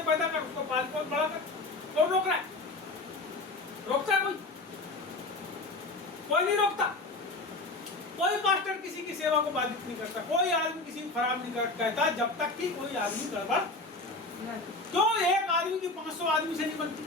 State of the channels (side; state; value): right; quieter; 3.1 dB